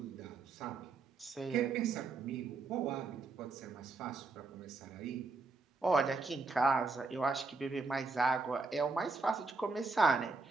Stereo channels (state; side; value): quieter; left; 3.9 dB